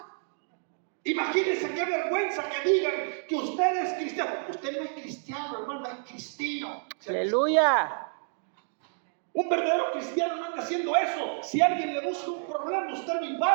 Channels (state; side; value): silent; left; digital silence